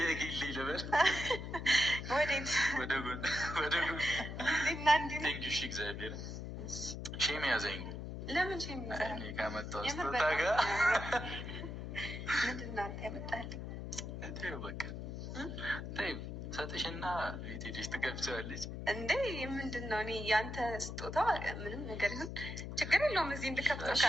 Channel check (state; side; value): noise; left; hum, 7 dB below the sound